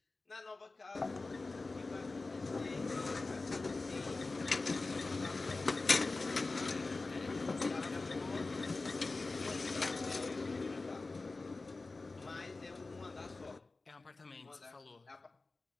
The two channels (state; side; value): quieter; right; 3.5 dB